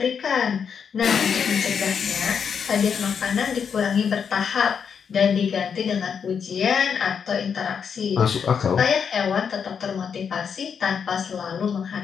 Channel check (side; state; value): right; quieter; 6.9 dB